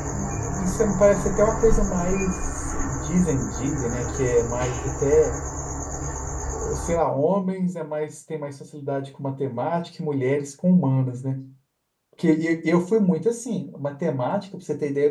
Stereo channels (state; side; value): identical; both; correlation 1.00